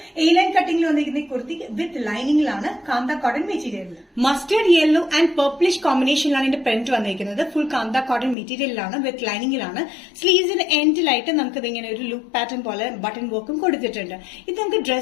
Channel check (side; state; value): right; drops out; at 8.3 s